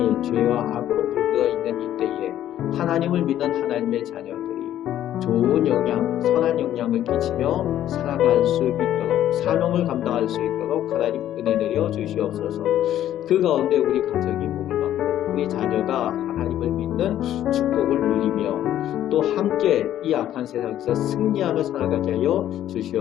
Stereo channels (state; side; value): quieter; right; 11.9 dB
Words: 죄와 악으로 물들어 있는 이때에 하나님을 믿는 하나님의 자녀들이 좋은 영향, 선한 영향을 끼치며 살아갈 수 있도록, 사명을 감당할 수 있도록 하나님 은혜 내려 주시옵소서. 그 가운데 우리 가정이 복을 받고 우리 자녀가 하나님을 믿는 축복을 누리며 또 함께 이 악한 세상에서 승리하며 살아가게 하여